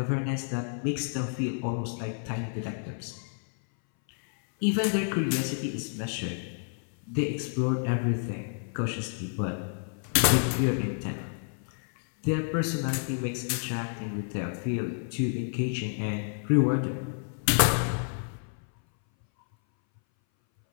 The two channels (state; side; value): silent; right; 58 dB below the other